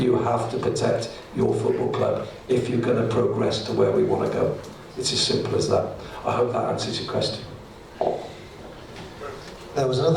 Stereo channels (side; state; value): both; identical; correlation 1.00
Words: have to protect your football club if you're going to progress to where we want to go. It's as simple as that. I hope that answers your question. There was